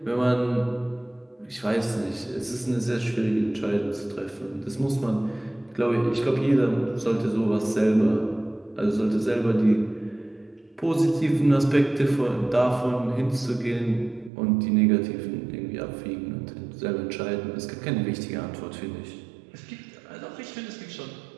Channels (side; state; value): left; drops out; at 14.3 s